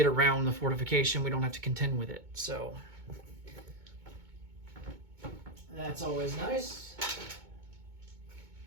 around the fortification. We don't have to contend with it. So that's always nice.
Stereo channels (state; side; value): late; left; 2.2 ms